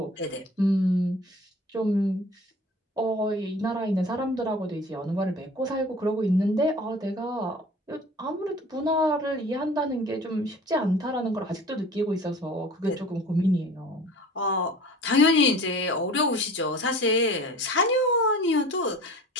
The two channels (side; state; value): both; normal; correlation 0.43